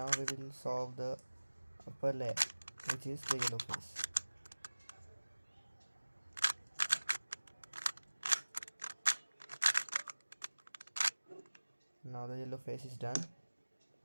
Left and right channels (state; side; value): inverted; both; correlation -1.00